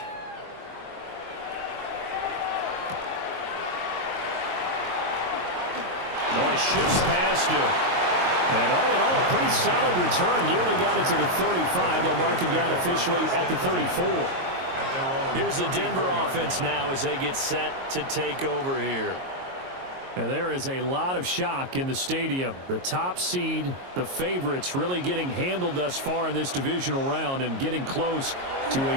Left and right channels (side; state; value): left; late; 22 ms